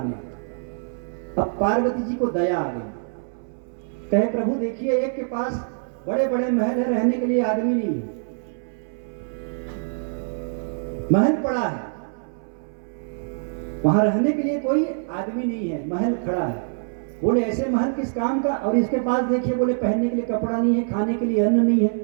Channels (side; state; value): left; silent; 62 dB below the other